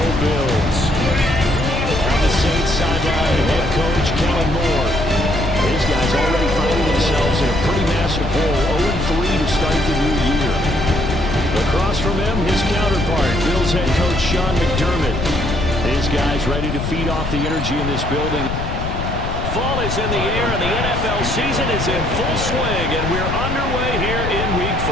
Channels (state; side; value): noise; left; rumble, 4 dB below the sound